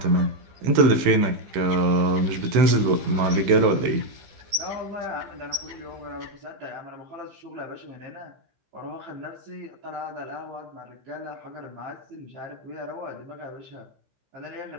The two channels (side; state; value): left; late; 15 ms